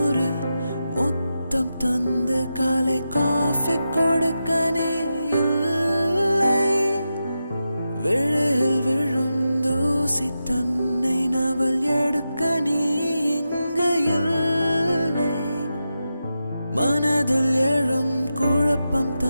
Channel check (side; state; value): both; inverted; correlation -0.89